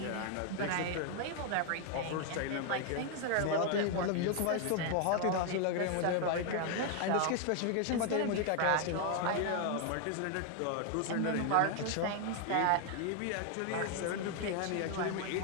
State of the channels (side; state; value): both; different; correlation 0.00